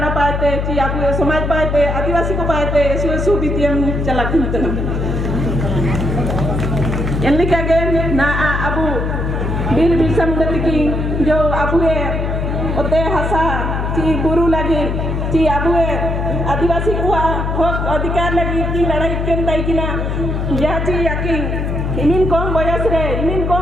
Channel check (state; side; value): noise; left; hum, 1 dB below the sound